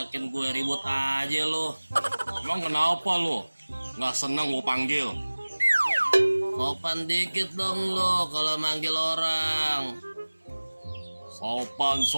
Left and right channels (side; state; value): both; inverted; correlation -1.00